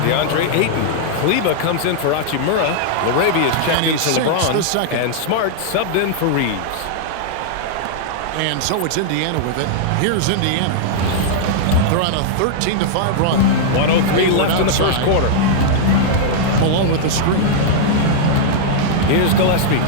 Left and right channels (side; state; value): both; different; correlation -0.01